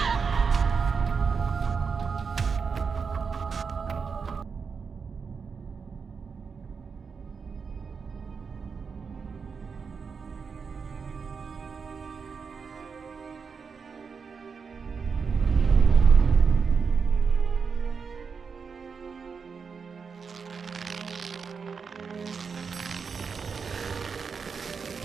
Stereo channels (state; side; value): quieter; left; 5.6 dB